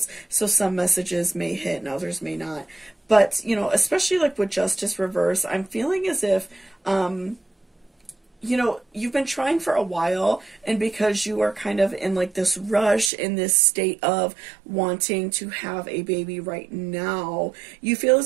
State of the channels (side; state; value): left; drops out; at 13.1 s